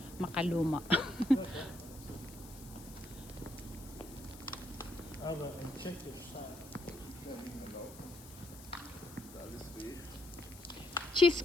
Makaluma. Aber in Tschechisch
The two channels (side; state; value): left; noise; hiss, 17 dB below the sound